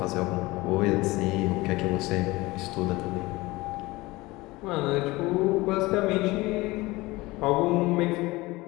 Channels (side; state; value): right; quieter; 21.0 dB